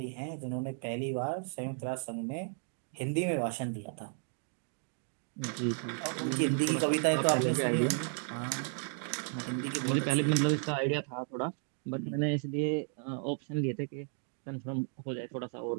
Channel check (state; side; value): silent; left; 55 dB below the other